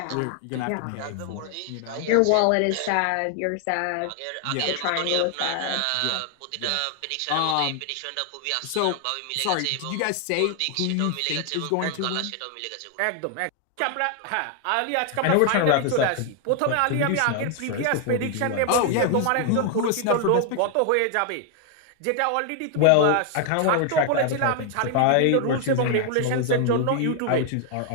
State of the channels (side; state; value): both; different; correlation 0.00